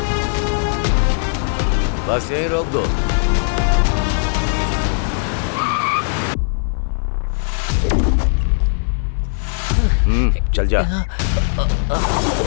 बस यहीं रोक दो। चल जा।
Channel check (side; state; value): right; silent; 59 dB below the other